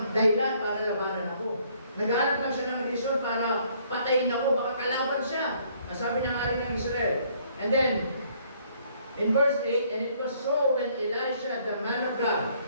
dahilan para labanan ako. Naghahanap lang siya ng reason para patayin ako. Baka kalaban siya. Sabi ng hari ng Israel. And then, in verse 8, and it was so when Elisha, the man of God,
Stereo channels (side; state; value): both; inverted; correlation -0.64